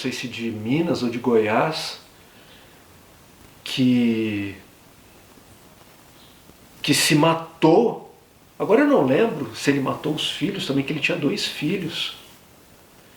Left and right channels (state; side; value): identical; both; correlation 1.00